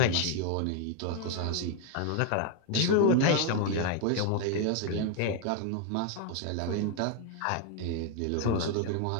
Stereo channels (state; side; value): different; both; correlation 0.01